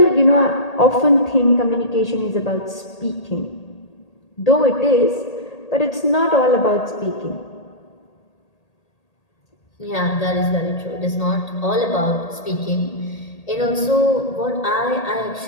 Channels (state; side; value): late; right; 1.8 ms